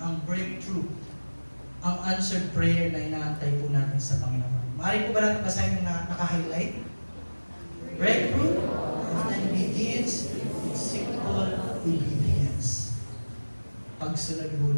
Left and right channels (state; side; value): inverted; both; correlation -1.00